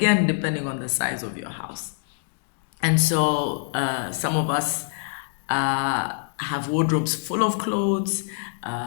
depending on the size of your house. And so some of us have wardrobes full of clothes,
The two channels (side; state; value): right; silent; 62 dB below the other